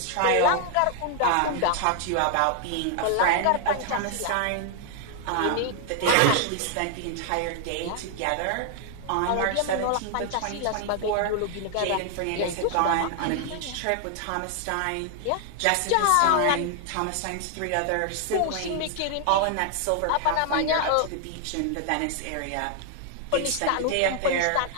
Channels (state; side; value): different; both; correlation 0.00